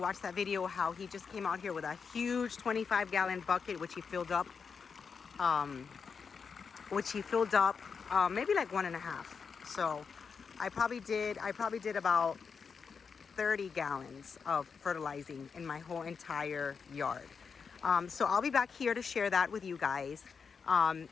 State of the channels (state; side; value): quieter; right; 5.8 dB